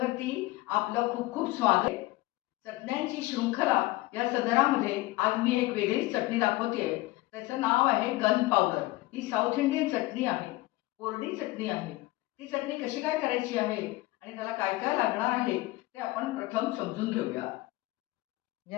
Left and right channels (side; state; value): right; quieter; 19.4 dB